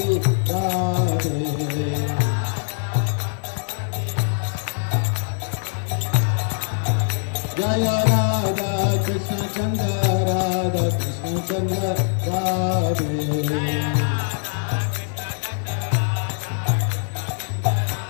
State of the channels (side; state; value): right; silent; 64 dB below the other